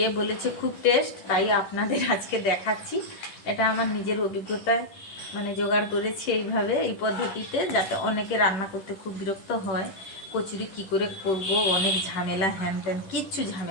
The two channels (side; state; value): right; late; 11 ms